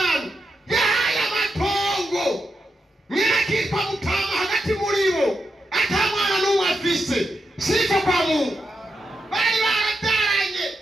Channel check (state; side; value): normal; both; correlation 0.86